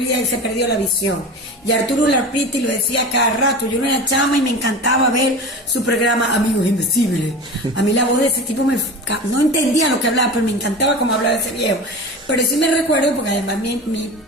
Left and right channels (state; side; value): normal; both; correlation 0.32